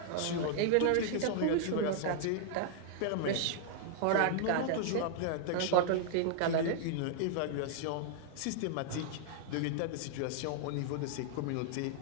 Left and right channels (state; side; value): different; both; correlation 0.00